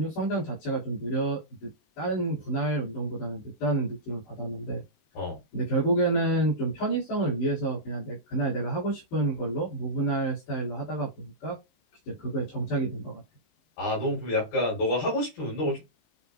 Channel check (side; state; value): right; late; 18 ms